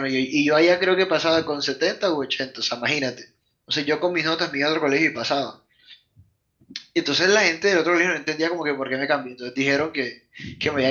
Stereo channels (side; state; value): both; identical; correlation 1.00